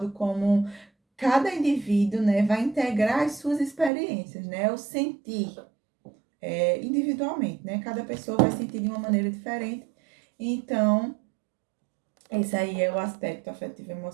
como cada indivíduo, né, vai integrar as suas experiências, né, o sentir individualmente, né, cada pessoa vai sentir de uma maneira diferente. Então, esse aí é o aspecto afetivo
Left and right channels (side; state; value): left; drops out; at 3.9 s